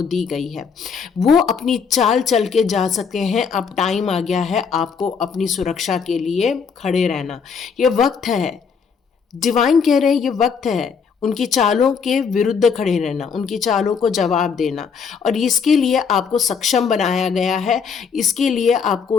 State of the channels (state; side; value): quieter; right; 6.1 dB